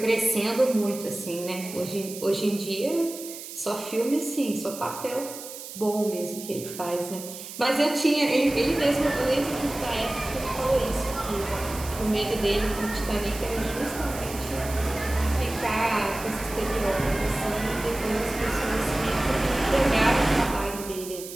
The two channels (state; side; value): noise; right; hiss, 12 dB below the sound